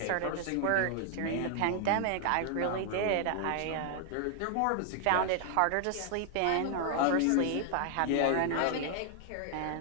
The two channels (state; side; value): different; both; correlation 0.00